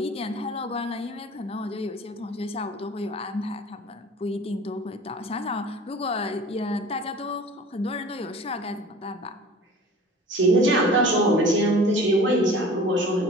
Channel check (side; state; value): both; normal; correlation 0.43